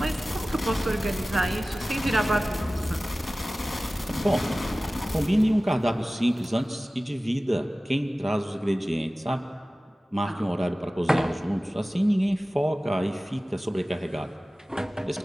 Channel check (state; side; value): normal; both; correlation 0.97